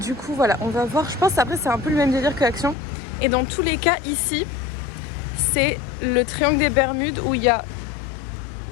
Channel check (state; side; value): drops out; right; at 2.8 s